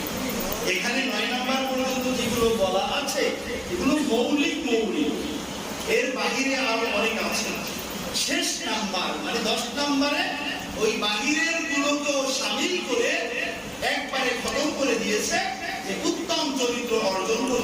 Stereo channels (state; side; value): identical; both; correlation 1.00